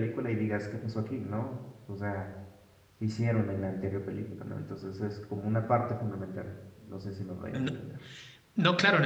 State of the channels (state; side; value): identical; both; correlation 1.00